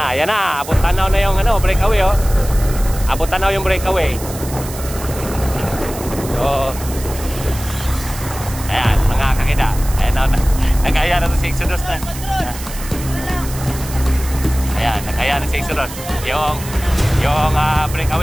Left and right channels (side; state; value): right; noise; hiss, 13 dB below the sound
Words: na. Abot tanaw na yung breakaway, oh. Abot tanaw yung breakaway. So, ayan, mga kakida. Ayan na. Nag-aya na si Exodus na. Ayan, nag-aya na si Exodus. Yung